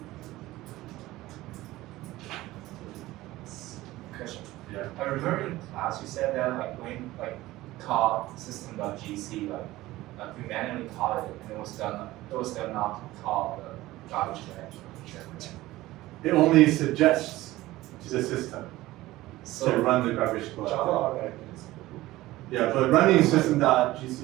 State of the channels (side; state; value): left; quieter; 17.4 dB